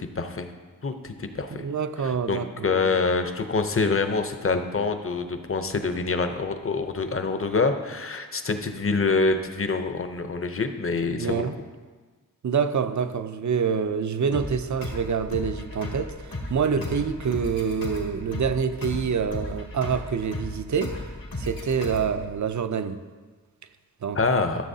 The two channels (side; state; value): both; normal; correlation 0.10